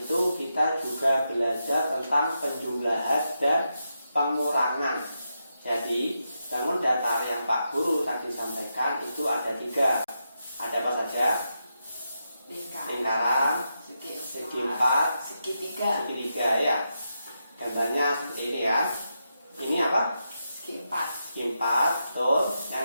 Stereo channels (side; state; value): both; inverted; correlation -0.85